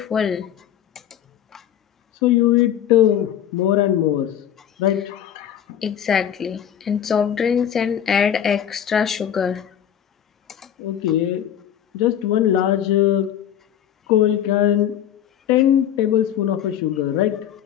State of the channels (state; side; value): quieter; right; 10.1 dB